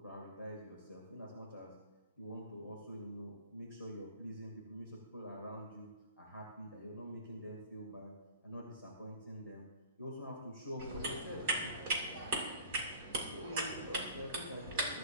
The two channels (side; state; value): both; inverted; correlation -0.46